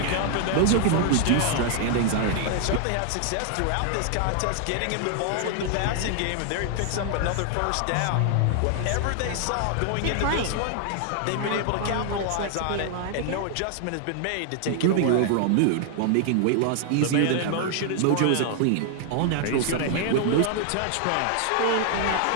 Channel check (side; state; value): both; different; correlation 0.00